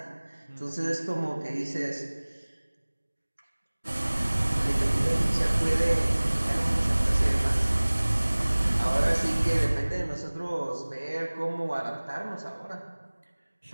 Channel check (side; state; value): both; inverted; correlation -1.00